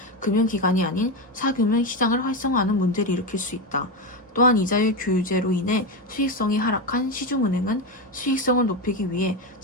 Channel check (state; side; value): normal; both; correlation 0.13